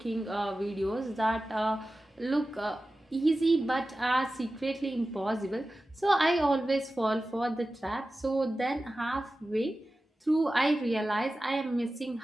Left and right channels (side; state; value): both; normal; correlation 0.95